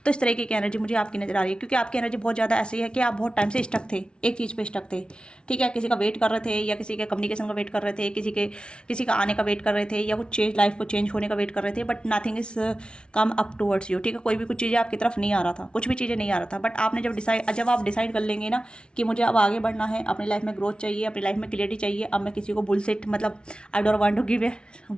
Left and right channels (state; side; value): late; right; 0.056 ms